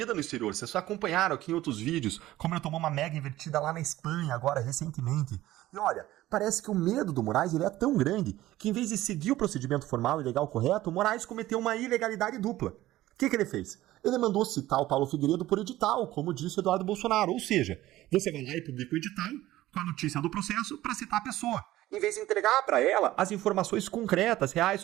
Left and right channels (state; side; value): quieter; left; 15.6 dB